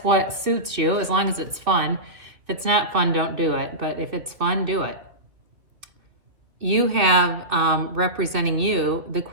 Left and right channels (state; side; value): late; left; 2.4 ms